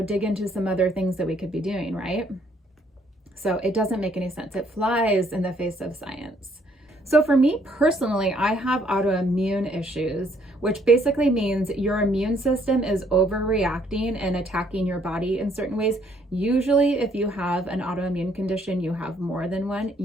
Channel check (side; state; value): both; normal; correlation 0.66